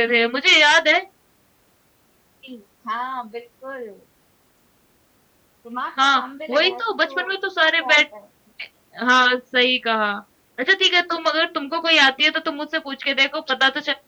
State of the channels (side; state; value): both; identical; correlation 1.00